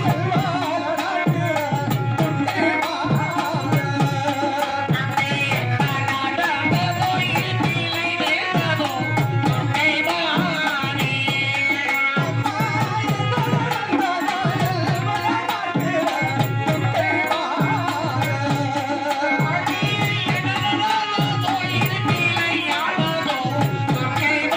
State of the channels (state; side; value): identical; both; correlation 1.00